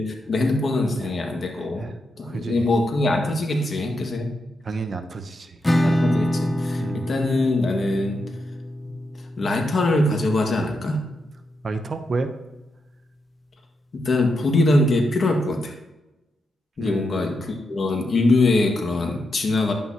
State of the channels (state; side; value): normal; both; correlation 0.85